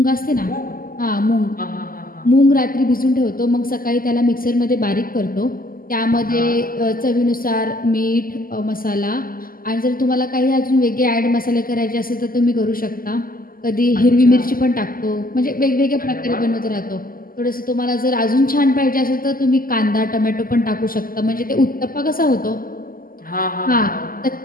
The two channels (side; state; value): right; late; 0.42 ms